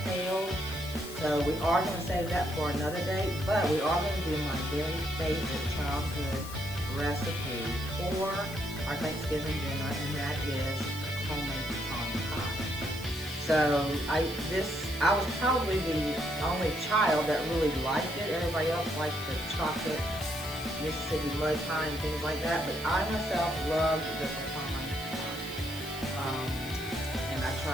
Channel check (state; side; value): noise; left; hiss, 14 dB below the sound